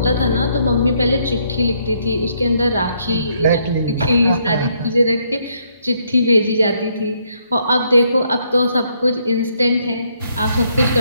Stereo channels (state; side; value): inverted; both; correlation -0.72